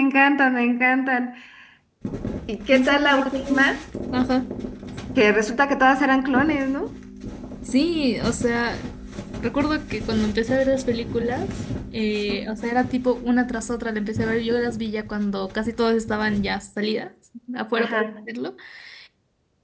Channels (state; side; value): identical; both; correlation 1.00